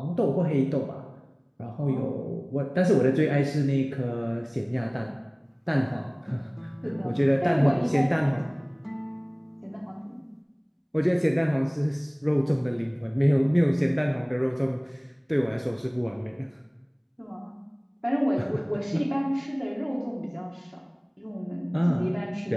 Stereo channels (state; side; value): identical; both; correlation 1.00